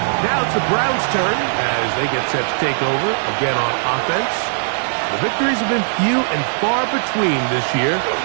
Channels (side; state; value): left; silent; digital silence